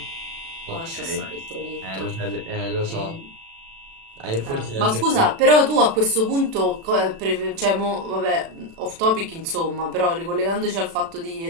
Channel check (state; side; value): late; left; 36 ms